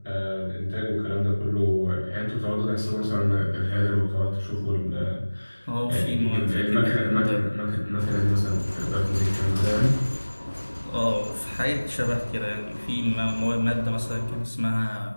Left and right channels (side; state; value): both; inverted; correlation -1.00